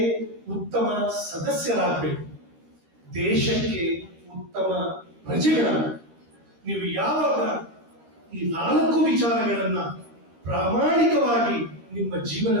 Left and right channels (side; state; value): left; late; 13 ms